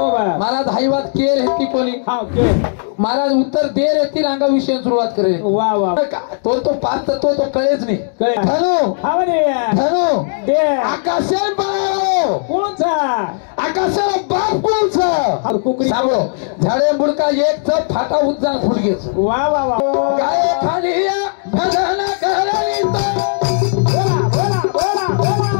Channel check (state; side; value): silent; right; digital silence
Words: महाराज हाईवात केर हेती कोणी हा के महाराज उत्तर देर येतील अंगा विषय सुरुवात करेल वा वा तो पाच तत्व तो कळेच नाही कळे धनु हा म्हणे धनु दे आकाशेल बाळो कोणचा आकाशाला बाप कोणचा हा कुकरी सांगो झाडे बुडका एक च फाटा उज्जा फुडगेच वा वा वा गाय खाली भजन करायचं बोला बोला बोला